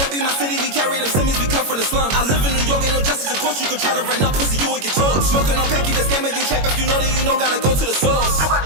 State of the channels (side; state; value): left; late; 21 ms